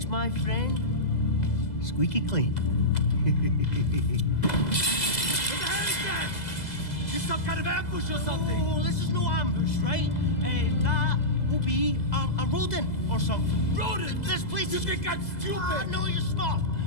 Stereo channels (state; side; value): late; right; 2.0 ms